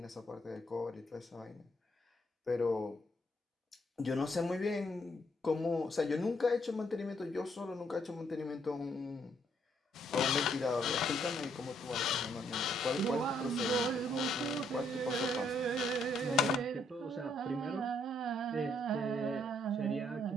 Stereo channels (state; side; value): normal; both; correlation 0.71